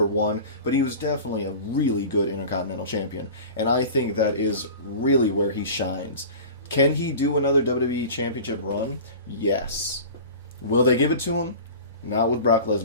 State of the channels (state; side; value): inverted; both; correlation -0.37